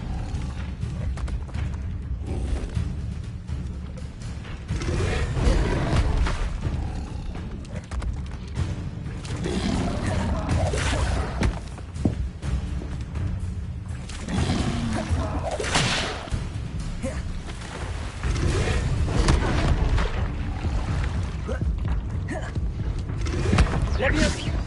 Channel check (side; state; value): both; identical; correlation 1.00